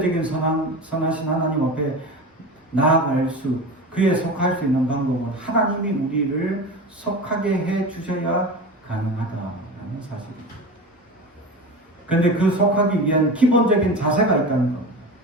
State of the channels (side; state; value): both; normal; correlation 0.29